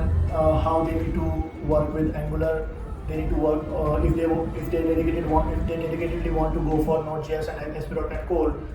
how they need to work with Angular. They need to work if they dedicatedly want to go for Node.js and ASP.NET Core,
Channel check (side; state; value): both; identical; correlation 1.00